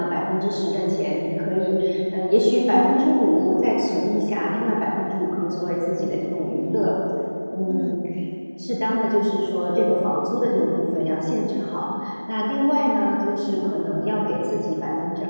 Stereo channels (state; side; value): inverted; both; correlation -1.00